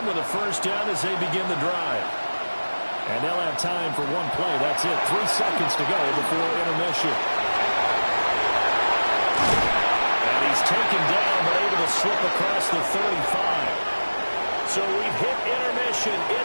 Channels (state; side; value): inverted; both; correlation -1.00